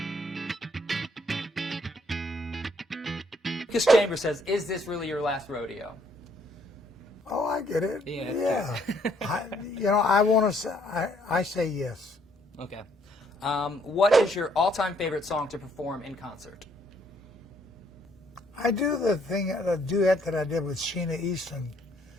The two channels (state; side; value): normal; both; correlation 0.67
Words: Lucas Chambers says, is this really your last rodeo? Oh, I get it. Yeah. I want to say, I say yes. Okay. What is your all-time favorite song to perform in concert? I do the duet that I did with Sheena Easton,